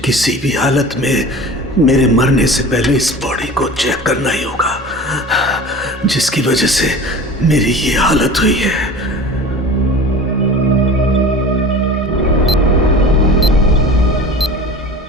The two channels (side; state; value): both; normal; correlation 0.37